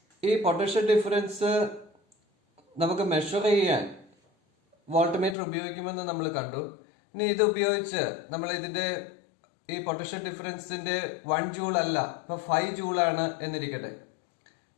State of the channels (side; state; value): right; drops out; at 5.4 s